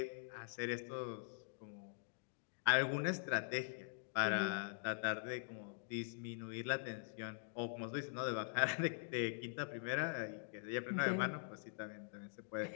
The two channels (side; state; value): right; silent; digital silence